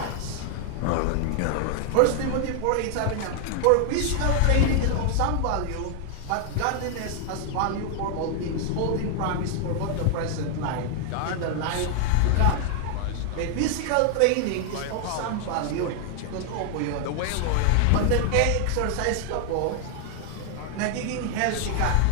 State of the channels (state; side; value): different; both; correlation 0.00